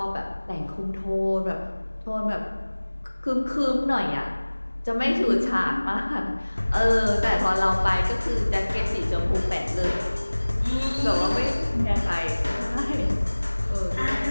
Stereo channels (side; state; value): both; inverted; correlation -1.00